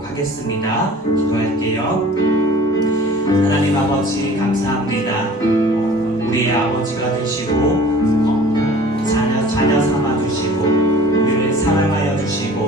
하겠습니다. 기도할게요. 하나님 아버지 감사합니다. 우리의 아버지가 되시고 자녀 삼아 주시고 우리를 사랑하여 주시고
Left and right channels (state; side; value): normal; both; correlation 0.46